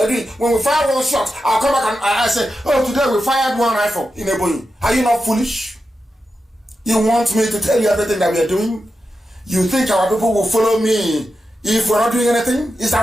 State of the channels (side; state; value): both; normal; correlation 0.90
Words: are doing. When we fire one shot, I'll come back and I say, oh, today we fired 1 rifle in Ebonyi. Are you not foolish? You want me to tell you everything that we are doing? You think our people will follow me if we're not doing anything? Is